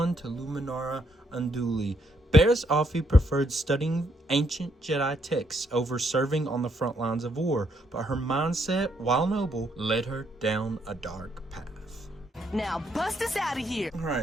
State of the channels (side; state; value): both; normal; correlation 0.74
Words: to Luminara Unduli. Barriss Offee preferred studying ancient Jedi texts over serving on the front lines of war, but her mindset, while noble, led her down a dark path. Now bust us out of here.